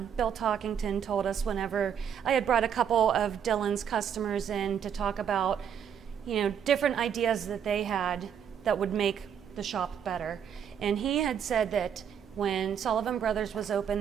Bill Talkington told us whenever I had brought a couple of Dylan's customers in to talk about, different ideas that they had that would make the shop better. And he had said that when Sullivan Brothers was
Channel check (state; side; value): quieter; left; 8.3 dB